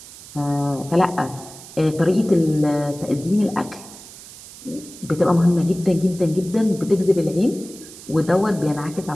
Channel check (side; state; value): right; noise; hiss, 17 dB below the sound